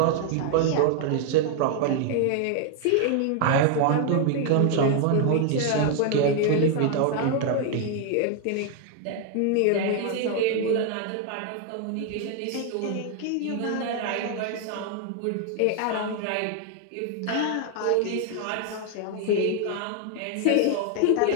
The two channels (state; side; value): different; both; correlation 0.00